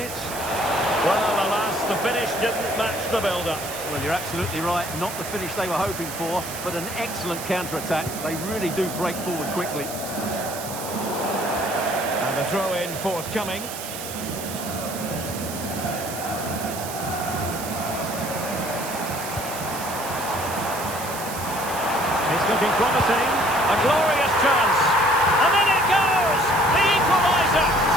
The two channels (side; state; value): right; noise; hiss, 9 dB below the sound